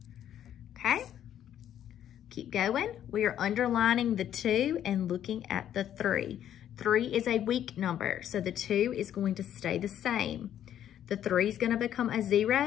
Okay? Keep going. We are underlining the 2 and looking at the 3. 3 is a weak number, so the 2 is going to stay the same. The 3 is going to become a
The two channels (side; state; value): right; quieter; 10.6 dB